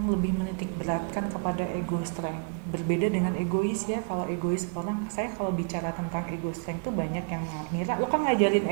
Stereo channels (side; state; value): left; quieter; 37.2 dB